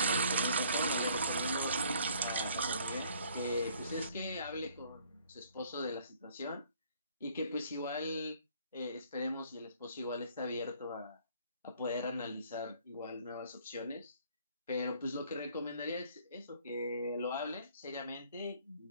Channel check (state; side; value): inverted; both; correlation -0.59